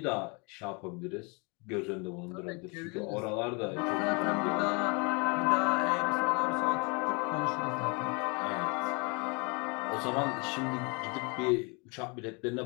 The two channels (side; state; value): right; quieter; 31.3 dB